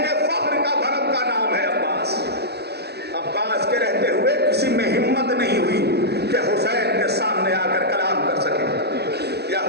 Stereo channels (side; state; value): left; late; 0.48 ms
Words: کے فخر کا بھرم کا نام ہے عباس. عباس کے رہتے ہوئے کسی میں ہمت نہیں ہوئی کہ حسین کے سامنے آ کر کلام کر سکے یا